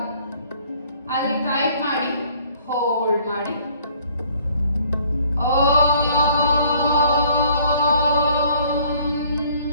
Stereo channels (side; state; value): both; inverted; correlation -0.59